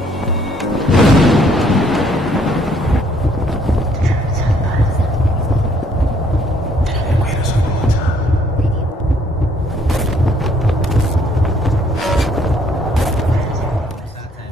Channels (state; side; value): normal; both; correlation 0.65